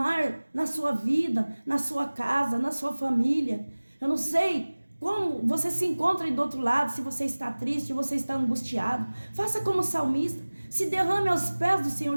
na sua vida, na sua casa, na sua família. Eu não sei como você se encontra aí do outro lado, se você está triste, se você está angustiado. Faça como o salmista. Se derrame aos pés do Senhor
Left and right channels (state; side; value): inverted; both; correlation -1.00